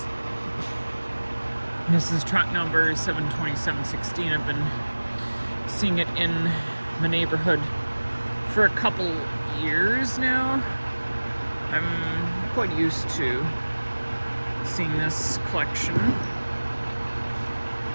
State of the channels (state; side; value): inverted; both; correlation -1.00